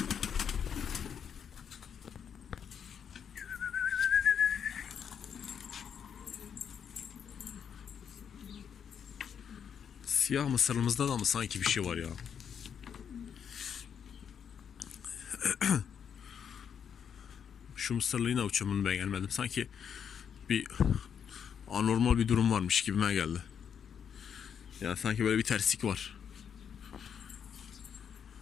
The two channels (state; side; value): quieter; right; 7.8 dB